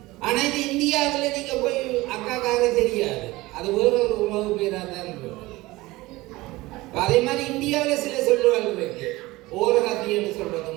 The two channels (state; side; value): quieter; left; 20.0 dB